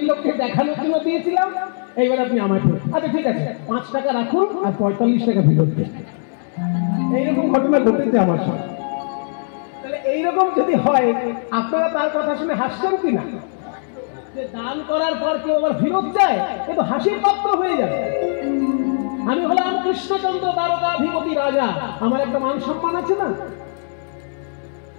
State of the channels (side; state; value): right; silent; 66 dB below the other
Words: লোককে দেখানোর জন্য দিয়েছিলাম, এইবার আপনি আমায় ফেরত। আচ্ছা ঠিক আছে, 5 টাকা রাখুন আর 45 টাকা ফেরত দেন। এইরকম ঘটনা ঘটেছে আমার সাথে। তাহলে এইরকম যদি হয়, আপনারা তার কথা শুনে হাসছেন কিনা? যে দান করার পর কেউ আবার ফেরত যায়, এ তো হাসির পাত্র হয়ে যাবে। আমি হলাম কৃষ্ণচন্দ্র দ্বারকাধিপতি রাজা, আমার একটা মান সম্মান আছে না?